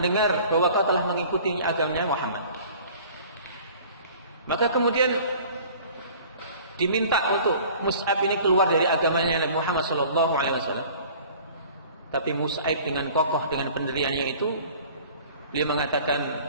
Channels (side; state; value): both; inverted; correlation -0.47